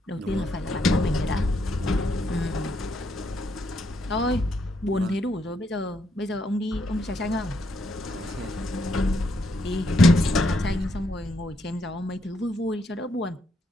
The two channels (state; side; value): normal; both; correlation 0.76